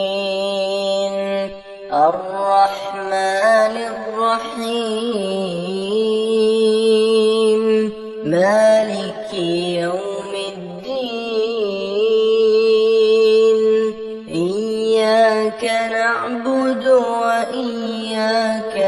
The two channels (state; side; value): identical; both; correlation 1.00